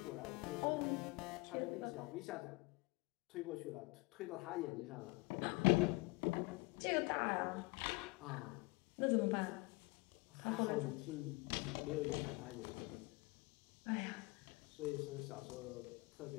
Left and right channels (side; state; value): right; quieter; 25.2 dB